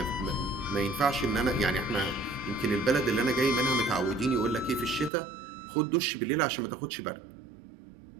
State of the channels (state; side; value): drops out; left; at 5.1 s